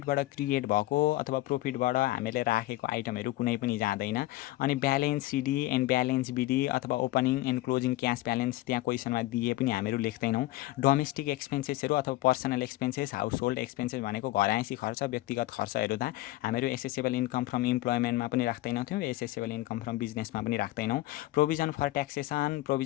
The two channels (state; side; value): quieter; right; 17.5 dB